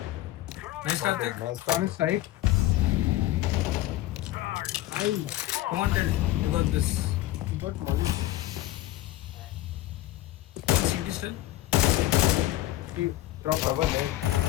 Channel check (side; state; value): right; quieter; 15.4 dB